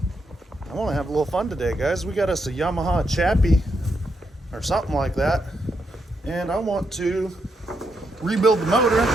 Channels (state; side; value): normal; both; correlation 0.81